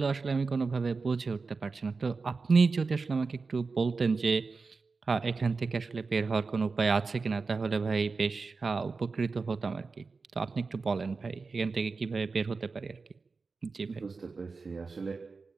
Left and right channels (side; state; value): left; quieter; 4.4 dB